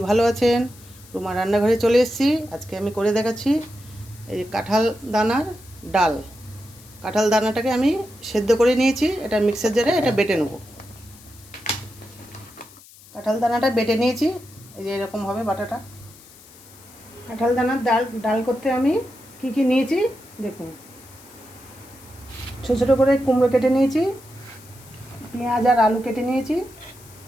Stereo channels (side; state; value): left; noise; hiss, 22 dB below the sound